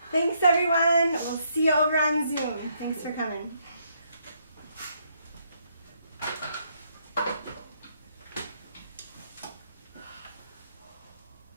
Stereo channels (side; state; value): both; inverted; correlation -0.73